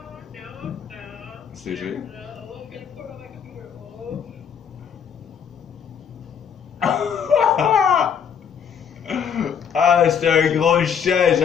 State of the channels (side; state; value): right; quieter; 7.5 dB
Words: C'est vrai. Ah, c'est un gros chien,